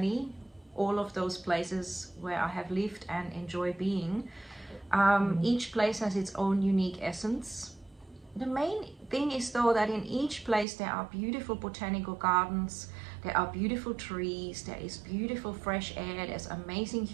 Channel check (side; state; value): left; drops out; at 10.7 s